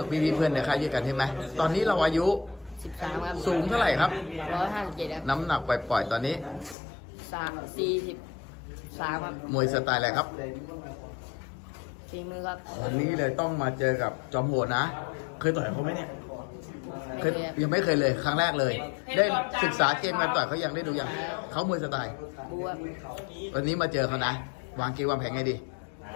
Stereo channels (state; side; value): drops out; right; at 6.8 s